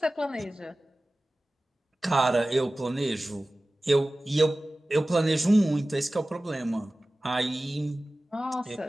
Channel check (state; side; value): normal; both; correlation 0.97